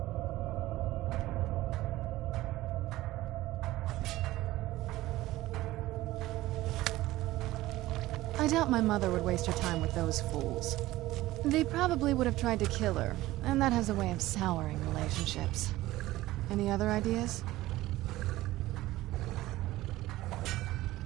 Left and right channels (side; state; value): left; quieter; 16.9 dB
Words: I doubt my mother would waste her time with those fools. They probably would have tried to kill her, and that has a way of souring relationships. Any other ideas?